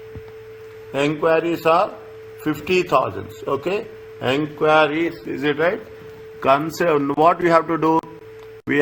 Enquiries are 50,000. Okay, enquiries, is it right? What we have to do? We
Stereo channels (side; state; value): both; identical; correlation 1.00